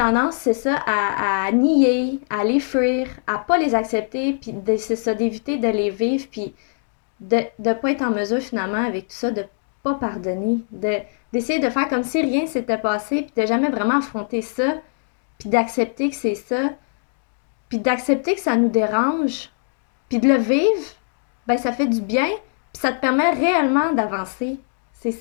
c'est ça, à nier, à les fuir, à pas les accepter, puis c'est ça, d'éviter de les vivre, puis de pas être en mesure finalement avec tout ça, de pas pardonner, d'essayer de faire comme si rien s'était passé, puis de jamais vraiment affronter ça, puis d'accepter que c'est ça, puis d'accepter que ça nous dérange, puis de le vivre, ben ça fait du bien, puis ça te permet réellement d'avancer. C'est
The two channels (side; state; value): right; silent; digital silence